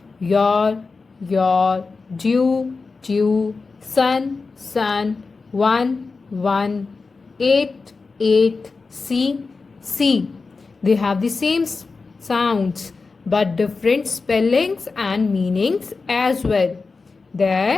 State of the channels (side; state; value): right; quieter; 4.2 dB